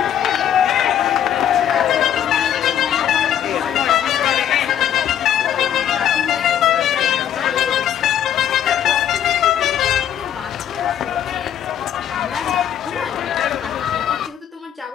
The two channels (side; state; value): right; quieter; 10.0 dB